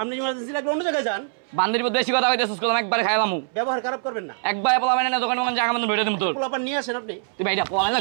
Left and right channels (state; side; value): silent; left; 63 dB below the other